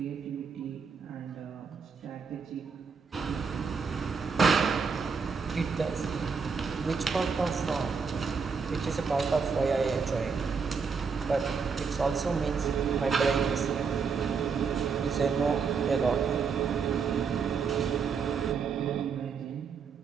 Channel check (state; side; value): quieter; left; 5.6 dB